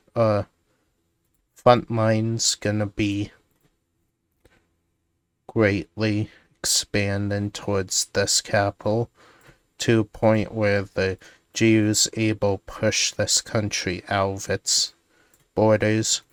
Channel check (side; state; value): both; identical; correlation 1.00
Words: front line's gonna be greatly expanding towards this capital to a point where the GU's able to push this country out of its borders,